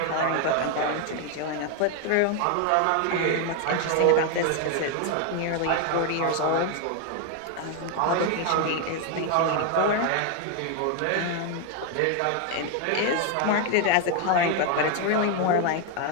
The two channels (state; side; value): different; both; correlation 0.01